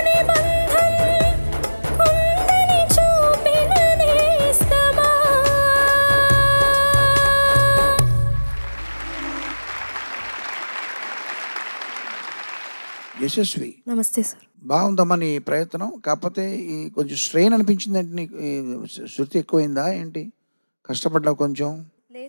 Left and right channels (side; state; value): both; inverted; correlation -1.00